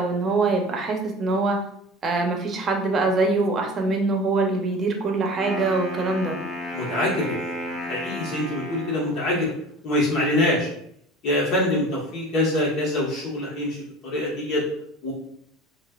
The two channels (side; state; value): both; normal; correlation 0.39